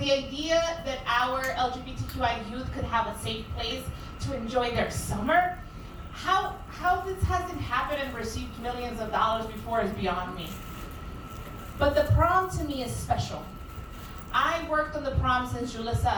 idea that our LGBTQI youth could have a safe place to enjoy their summer, how this hasn't happened and received millions of dollars before is beyond me. But the prom to me is special. I worked on the prom since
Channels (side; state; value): both; identical; correlation 1.00